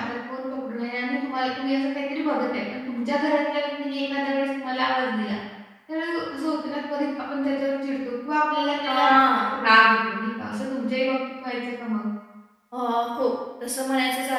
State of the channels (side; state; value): both; identical; correlation 1.00